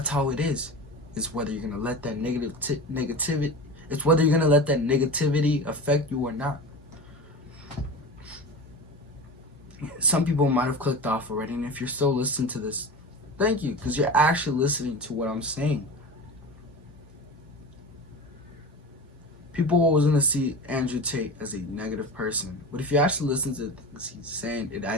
how it is. It's whether you're going to let that negativity It's whether you're gonna let that negativity affect you or not. Some people might have clicked off already, and if you're still listening to this, thank you, because you're actually listening to what I'm saying. People are always gonna see Andrew Tate as a negative person, but if you actually listen to things he's saying, it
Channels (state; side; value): normal; both; correlation 0.30